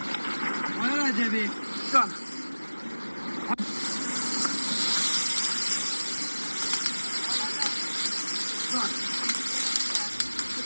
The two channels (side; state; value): both; inverted; correlation -1.00